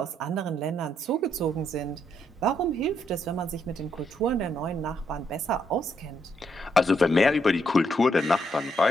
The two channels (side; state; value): both; normal; correlation 0.76